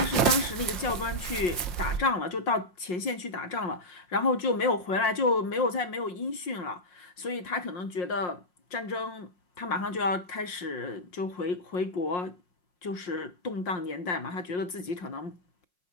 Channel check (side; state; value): right; late; 5.6 ms